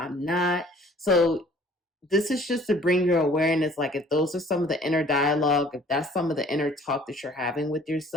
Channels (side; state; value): both; normal; correlation 0.53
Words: not? So this is just to bring your awareness, like if those are some of the inner dialogue, if that's some of the inner talk that you're having with